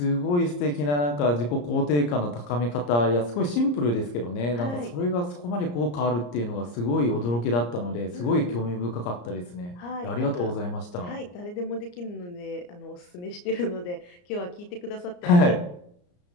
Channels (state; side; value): late; right; 34 ms